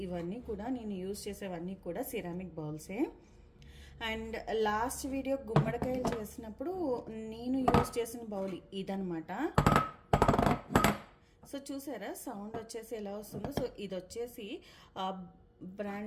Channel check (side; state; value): both; identical; correlation 1.00